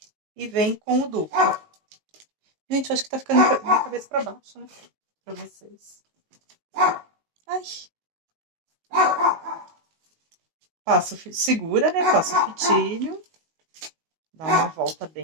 e vem com o duplo. Gente, eu acho que tá ficando minha cabeça pra baixo, né? Pra vocês. Ai. Passo, segura, né? Passa o fitilho. Dá uma volta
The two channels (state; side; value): late; left; 19 ms